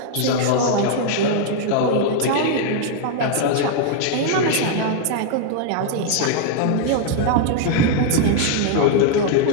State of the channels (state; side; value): different; both; correlation 0.00